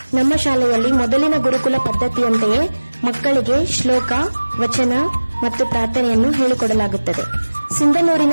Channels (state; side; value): inverted; both; correlation -1.00